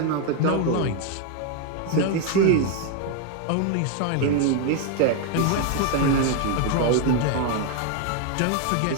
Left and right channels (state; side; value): different; both; correlation 0.01